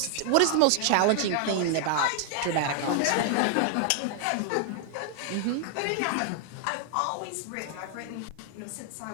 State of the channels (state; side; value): different; both; correlation 0.00